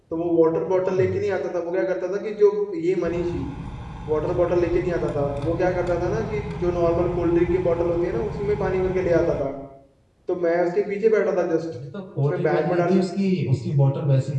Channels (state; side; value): identical; both; correlation 1.00